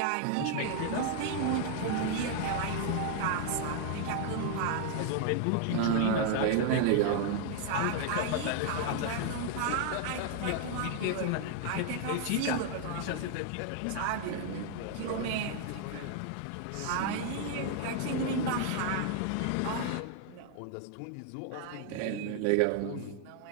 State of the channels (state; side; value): different; both; correlation 0.00